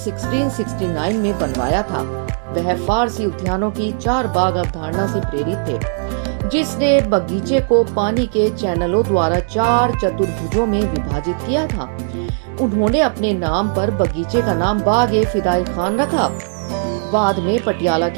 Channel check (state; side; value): silent; left; digital silence